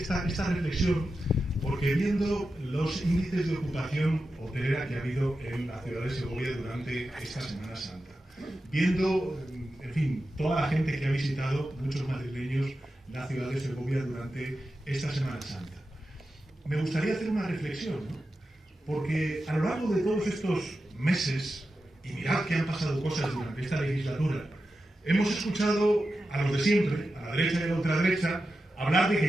reflexión porque viendo los índices de ocupación hotelera que ha habido en la ciudad de Segovia durante esta Semana Santa, viendo, en fin, toda la gente que ha visitado, muchos madrileños, la ciudad de Segovia durante esta Semana Santa, me gustaría hacer una reflexión, ¿no? Porque a lo largo de todos estos meses, y mirad que han pasado cosas durante esta legislatura, hemos escuchado a los de siempre, a la derecha y a la ultraderecha, hablar de que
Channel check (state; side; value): normal; both; correlation 0.91